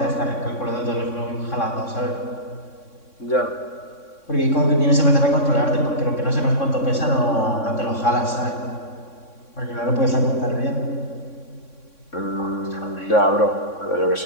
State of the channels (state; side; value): late; right; 3.6 ms